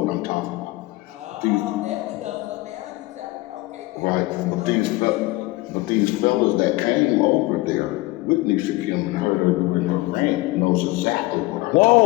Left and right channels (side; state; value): right; quieter; 20.5 dB